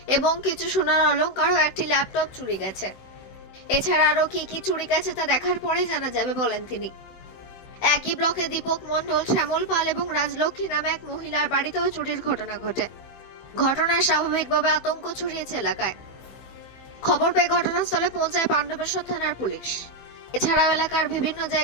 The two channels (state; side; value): late; right; 16 ms